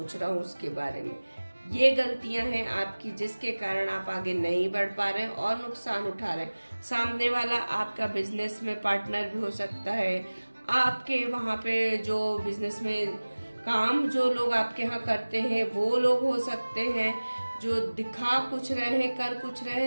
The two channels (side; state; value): both; inverted; correlation -1.00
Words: रहा हूँ उसके बारे में। ये गलतियां हैं आपकी, जिसके कारण आप आगे नहीं बढ़ पा रहे हैं और नुकसान उठा रहे हैं। सामने वाला आपका बिजनेस में पार्टनर भी हो सकता है, आपके वहां पे जो बिजनेस में काम जो लोग आपके यहाँ करते हैं वो लोग हो सकते हैं, जो दिखा कुछ रहे हैं, कर कुछ रहे